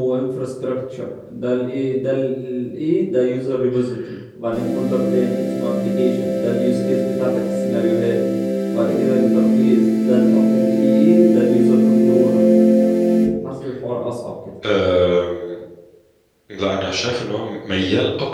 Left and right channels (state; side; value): identical; both; correlation 1.00